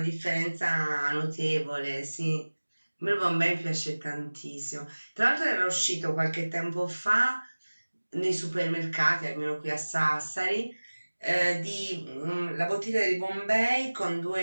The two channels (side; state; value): both; inverted; correlation -1.00